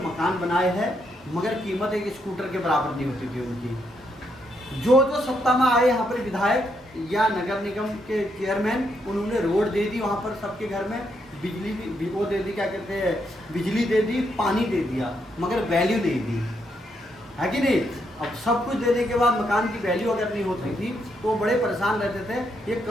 बनाए हैं, मगर कीमत एक स्कूटर के बराबर नहीं होती थी उनकी। जो सत्ता में आए यहाँ पर विधायक या नगर निगम के चेयरमैन, उन्होंने रोड दे दी वहाँ पर सबके घर में, बिजली भी वो दे दी, क्या कहते हैं, बिजली दे दी, पानी दे दिया, मगर वैल्यू नहीं दी, है कि नहीं। अब सब कुछ देने के बाद मकान की वैल्यू अगर नहीं होती थी तो बड़े परेशान रहते थे। ये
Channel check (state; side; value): normal; both; correlation 0.78